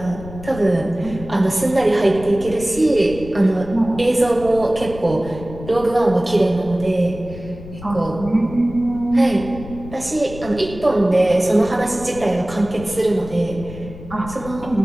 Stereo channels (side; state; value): left; noise; rumble, 14 dB below the sound